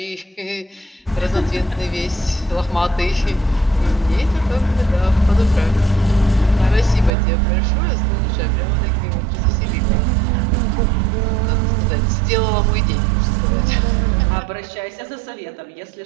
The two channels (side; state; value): left; drops out; at 7.1 s